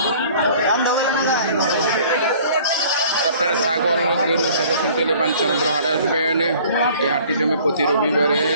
আপনারা ছাগল গরু ছাগল কিনতে হলে Banchanampur হাটে আসবেন। এই হাটটি জমে প্রতি রবিবারে।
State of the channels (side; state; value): both; inverted; correlation -0.51